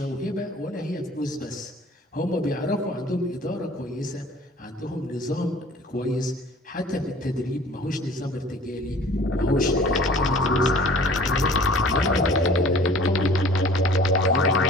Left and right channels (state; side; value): normal; both; correlation 0.48